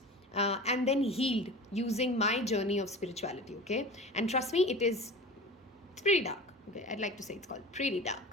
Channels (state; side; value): normal; both; correlation 0.36